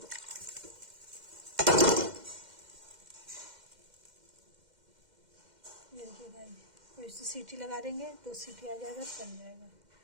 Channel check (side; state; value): left; late; 2.1 ms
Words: ये देखिए गाइस, और इसे सीटी लगा देंगे तो सीटी आ जाएगा, बन जाएगा।